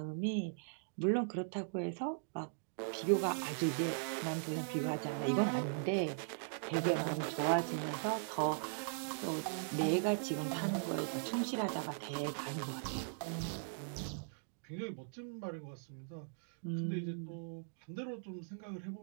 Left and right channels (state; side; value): silent; left; digital silence